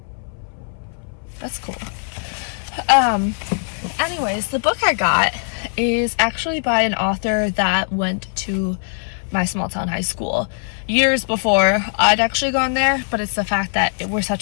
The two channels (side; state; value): right; silent; 63 dB below the other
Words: That's cool. Anyways, the book I got is actually by an author that went to my small town high school years before I'd actually gone there, but it's the fact that we're